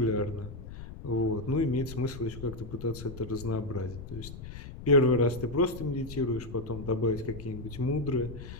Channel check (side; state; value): left; noise; rumble, 11 dB below the sound